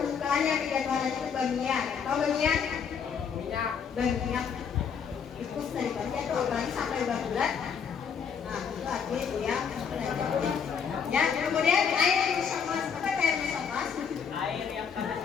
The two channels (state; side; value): quieter; right; 6.9 dB